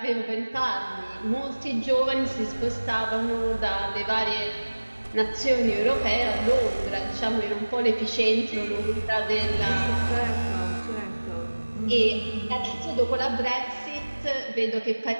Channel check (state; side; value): inverted; both; correlation -1.00